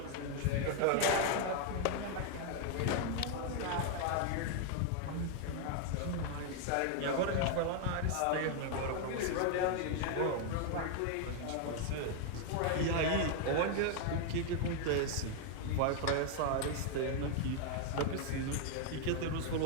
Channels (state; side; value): different; both; correlation 0.00